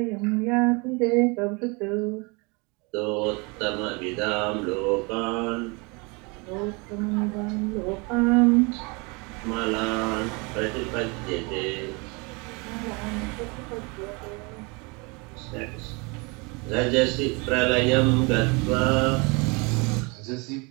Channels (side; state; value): left; quieter; 29.3 dB